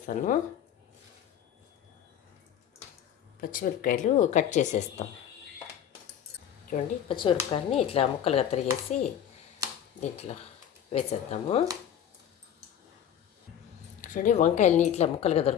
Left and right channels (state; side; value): quieter; right; 9.6 dB